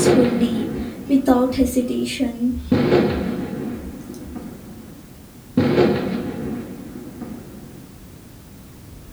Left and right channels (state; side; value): identical; both; correlation 1.00